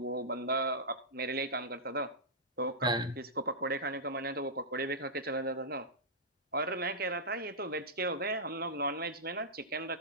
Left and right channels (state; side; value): normal; both; correlation -0.13